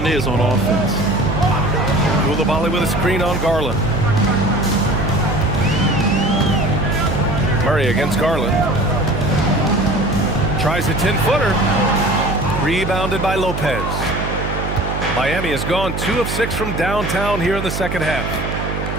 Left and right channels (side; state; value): right; noise; hum, 4 dB below the sound